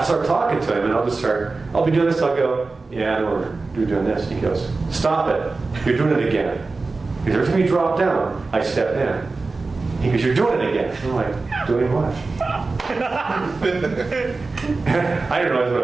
start talking to him, and I'll be doing this, I'll go, yeah, I know you're doing this. He goes, stop it, you're doing it again. Because every time you drop down, I step in. He goes, you're doing it again. I'm like, doing what? I didn't realize what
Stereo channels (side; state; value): left; quieter; 3.8 dB